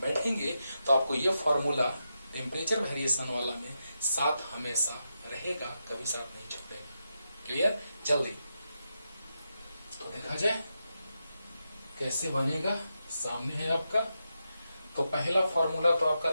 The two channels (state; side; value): inverted; both; correlation -0.87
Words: तो आपको ये फॉर्मूला टेम्परेचर वेरिएशन वाला में साथ हमेशा रहेगा, कभी साथ नहीं छूटेगा। क्लियर? जल्दी तो देखा जाए कैसे बनेगा, सामने है आपका। तो पहला फॉर्मूला तो आपका